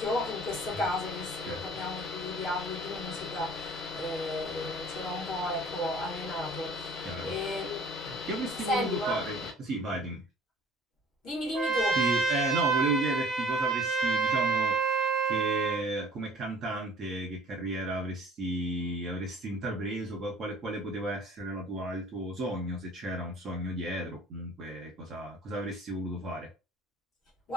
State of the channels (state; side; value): normal; both; correlation 0.51